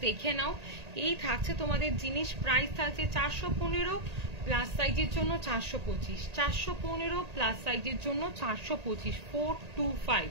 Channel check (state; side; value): late; left; 1.8 ms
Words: দেখে নাও। এই থাকছে তোমাদের জিনিস। প্রাইস থাকছে 415, প্লাস সাইজের জন্য 425, 415 প্লাস সাইজের জন্য 425,